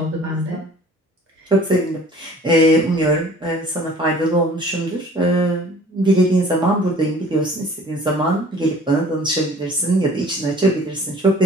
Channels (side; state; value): both; normal; correlation 0.49